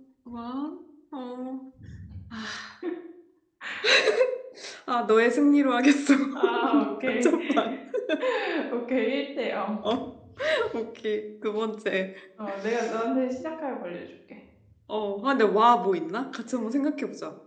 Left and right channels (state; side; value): identical; both; correlation 1.00